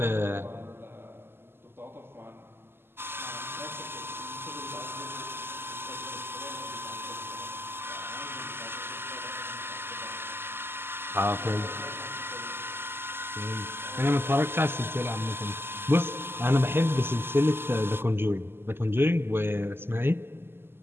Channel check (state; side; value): late; left; 0.11 ms